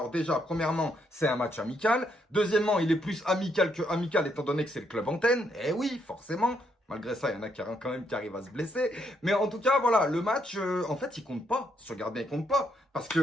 déjà, premièrement, c'est un match amical. Deuxièmement, il est plus amical que amical, étant donné que c'est le club antenne. Eh oui, forcément. Malgré ça, il y en a quand même qui arrivent à se blesser. Mais en tout cas, voilà, le match, en fait, il compte pas. Si tu regardes bien, il compte pas. Parce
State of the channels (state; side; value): normal; both; correlation 0.75